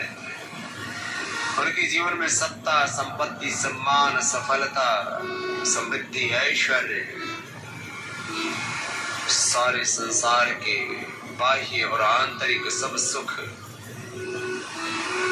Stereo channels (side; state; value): both; identical; correlation 1.00